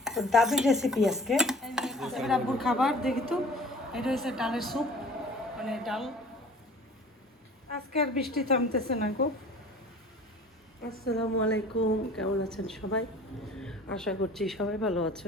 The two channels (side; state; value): both; normal; correlation 0.46